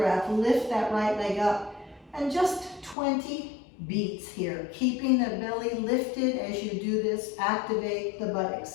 Lift that right leg up. And just 20 beats here, keeping the belly lifted as you do this. Activate the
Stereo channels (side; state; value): right; drops out; at 3.0 s